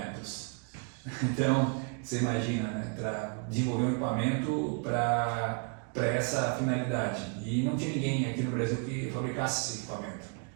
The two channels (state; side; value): quieter; left; 37.8 dB